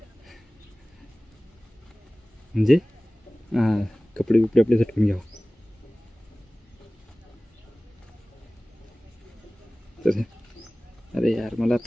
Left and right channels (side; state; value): both; normal; correlation 0.98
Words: म्हणजे कपडे बिपडे आपले झटकून घ्यावं. तर अरे यार मला